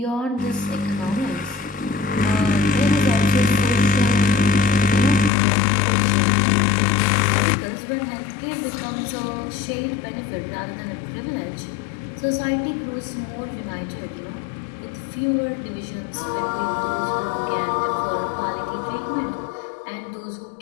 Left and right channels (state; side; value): drops out; right; at 5.3 s